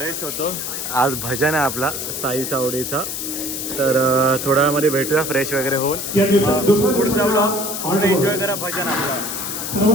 होतो. आज भजन आहे आपला साई चावडीचा. तर थोड्या वेळामध्ये भेटूया फ्रेश वगैरे होऊन. या दिवसात दुसऱ्या पुढचा ब्लॉग हॉल्ट एन्जॉय करा भजन आपला.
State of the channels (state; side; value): noise; left; hiss, 4 dB below the sound